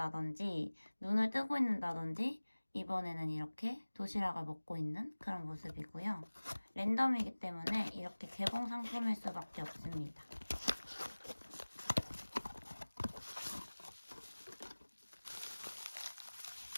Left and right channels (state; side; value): inverted; both; correlation -1.00